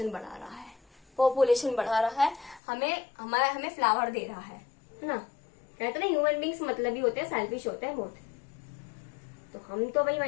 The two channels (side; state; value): right; drops out; at 2.6 s